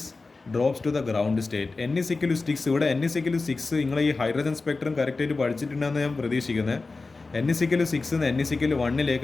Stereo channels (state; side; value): quieter; right; 3.8 dB